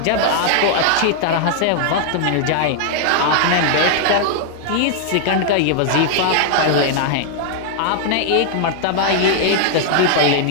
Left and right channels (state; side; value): different; both; correlation -0.01